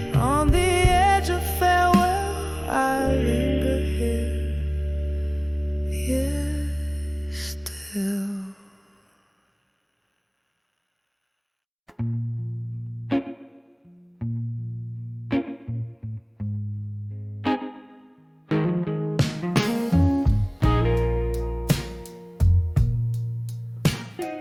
on the edge of farewell I linger here, yes, still.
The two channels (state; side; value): identical; both; correlation 1.00